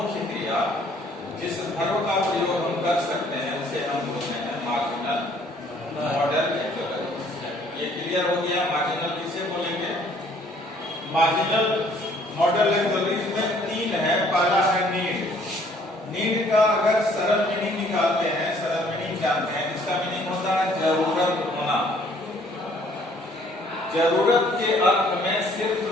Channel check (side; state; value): both; normal; correlation 0.60